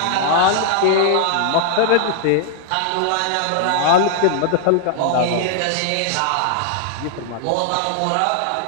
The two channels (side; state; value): both; different; correlation 0.00